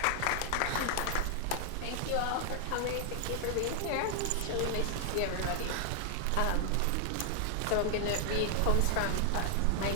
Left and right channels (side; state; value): both; different; correlation 0.00